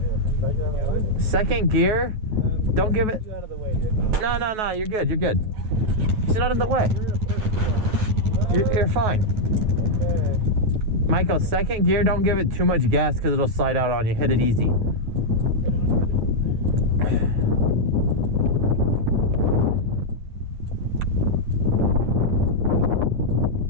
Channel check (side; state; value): left; late; 9.3 ms